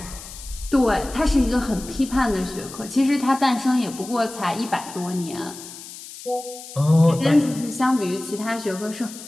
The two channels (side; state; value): left; noise; hiss, 14 dB below the sound